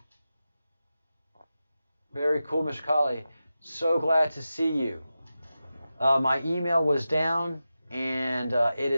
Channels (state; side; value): inverted; both; correlation -0.93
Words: Very cool, Mr. Colley. So glad to see you. My email was down, and it